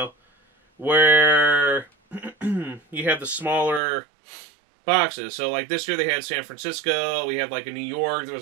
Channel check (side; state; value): left; drops out; at 3.8 s